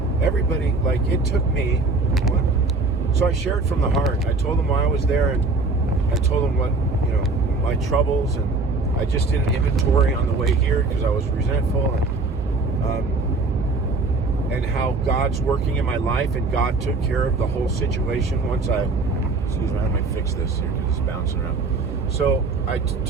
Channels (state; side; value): quieter; left; 3.6 dB